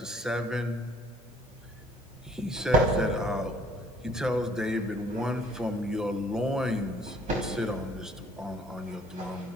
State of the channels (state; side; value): normal; both; correlation 0.58